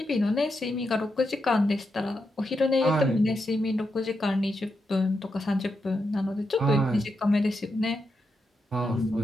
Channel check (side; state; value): both; normal; correlation 0.85